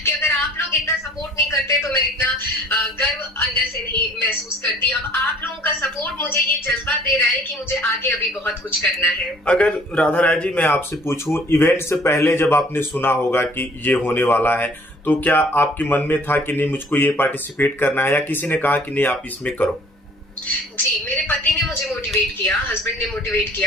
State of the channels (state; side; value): normal; both; correlation 0.55